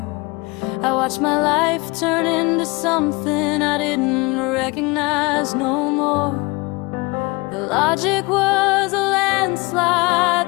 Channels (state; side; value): quieter; right; 25.4 dB